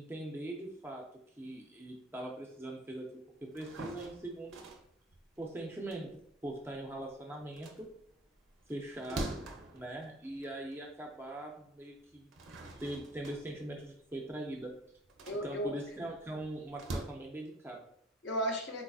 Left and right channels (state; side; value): normal; both; correlation 0.50